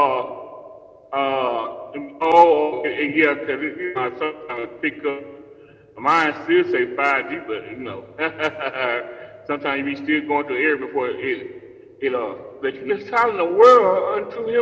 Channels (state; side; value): identical; both; correlation 1.00